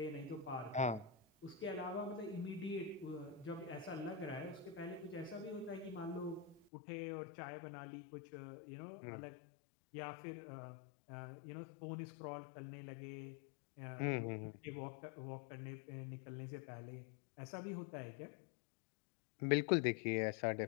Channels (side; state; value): right; drops out; at 6.7 s